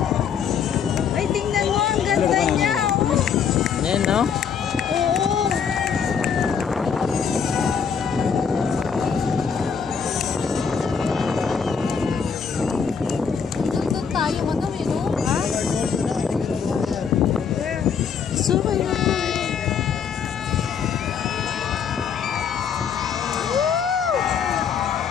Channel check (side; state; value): right; quieter; 6.8 dB